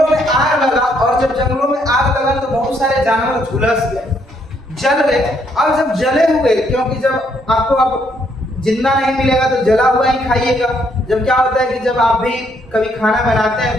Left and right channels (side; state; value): both; normal; correlation 0.71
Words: में आग लगा, और जब जंगलों में आग लगा तो बहुत सारे जानवर झुलस गए, जल गए। अब जब जले हुए, क्योंकि जब आपको अब जिंदा नहीं मिलेगा तो जला हुआ ही खाइएगा। जब क्या होता है कि जब आप भी कभी खाना बनाते